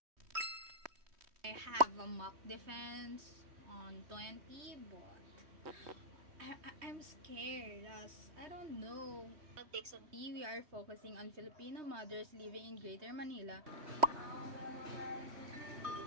I have a mock defense on 20, but I'm scared as I don't know. We are focusing on Filipino mothers living in Greater Manila.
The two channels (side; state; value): left; late; 3.2 ms